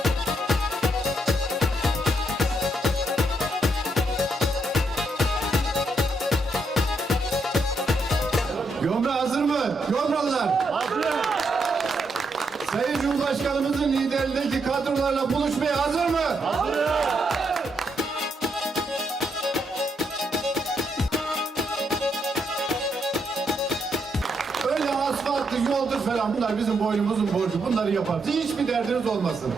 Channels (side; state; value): both; normal; correlation 0.78